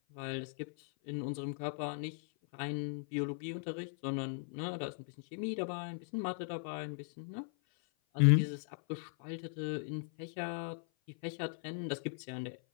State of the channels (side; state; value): right; silent; 52 dB below the other